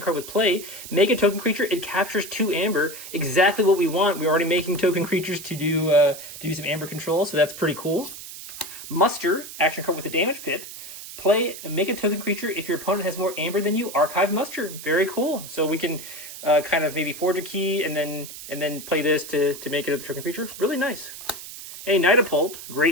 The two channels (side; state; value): right; noise; hiss, 12 dB below the sound